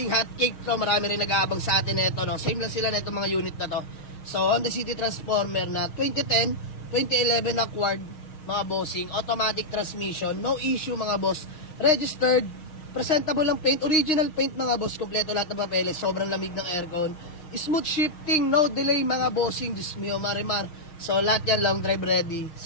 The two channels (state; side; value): late; right; 6.4 ms